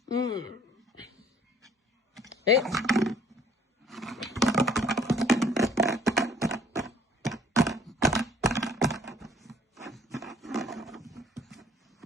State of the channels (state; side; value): normal; both; correlation 0.57